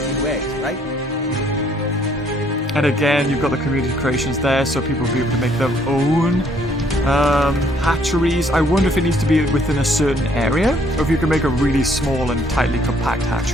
few eggs, right? And again, you've got the community creations there, so people will be able to make their own hatcheries. I wonder if it needs to be within a certain area, or if you can make a really small and tightly compact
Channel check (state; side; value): normal; both; correlation 0.65